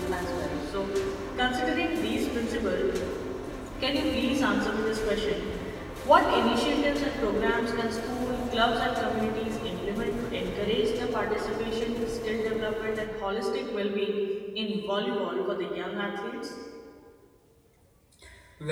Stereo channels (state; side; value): identical; both; correlation 1.00